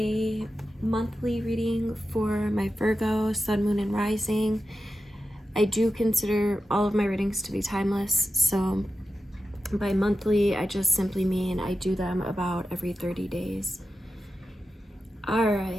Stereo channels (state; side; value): normal; both; correlation 0.90